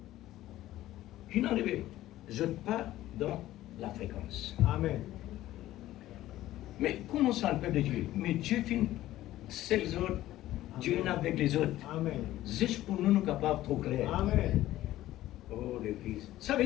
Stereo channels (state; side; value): quieter; right; 14.8 dB